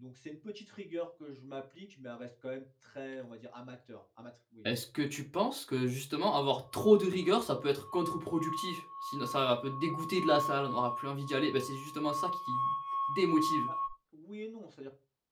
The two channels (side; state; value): both; identical; correlation 1.00